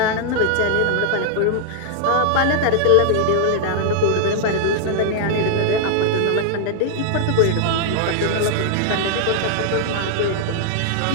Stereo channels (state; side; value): different; both; correlation -0.01